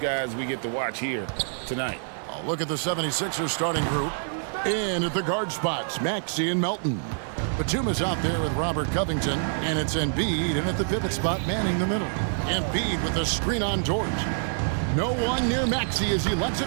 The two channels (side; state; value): left; silent; digital silence